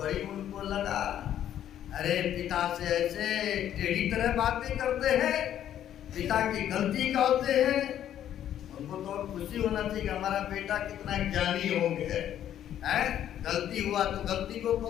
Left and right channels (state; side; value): quieter; right; 10.9 dB